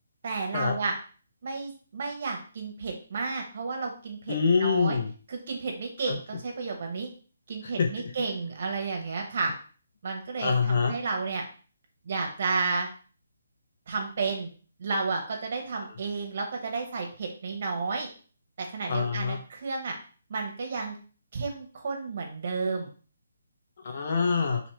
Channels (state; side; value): inverted; both; correlation -0.77